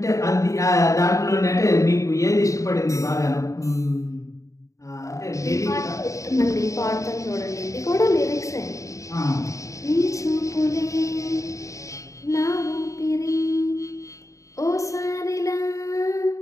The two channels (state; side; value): late; right; 0.16 ms